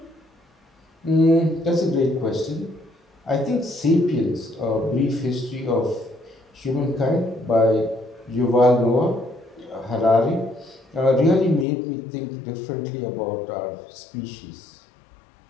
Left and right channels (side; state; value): right; drops out; at 11.7 s